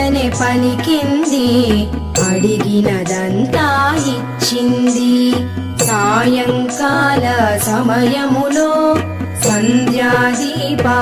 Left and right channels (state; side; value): identical; both; correlation 1.00